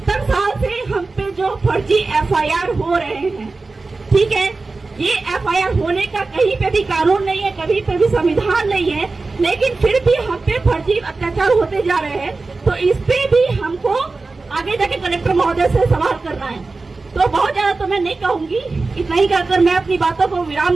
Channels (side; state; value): left; quieter; 3.7 dB